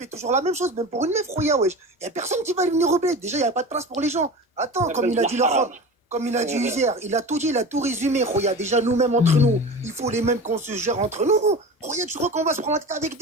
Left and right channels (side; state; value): both; normal; correlation 0.32